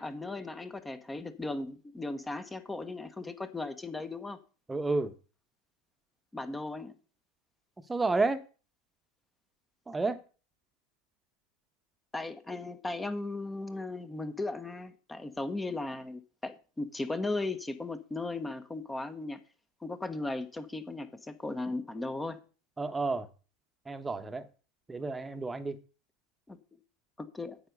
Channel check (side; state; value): both; normal; correlation 0.88